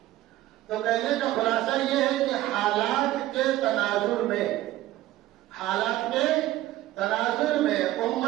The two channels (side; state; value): left; quieter; 15.3 dB